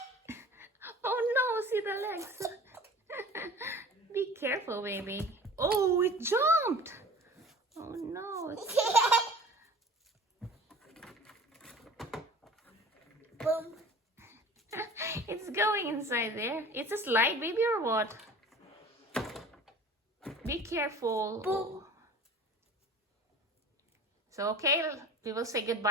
Oh no, see the legs. Be careful, baby. Oh, it jumped. Oh no. Boom. It's going inside there. It's a slide, baby, or what? Be careful. Boom. So, okay, we will say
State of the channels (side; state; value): both; normal; correlation 0.42